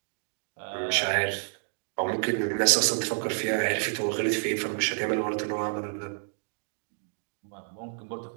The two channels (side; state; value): left; silent; 58 dB below the other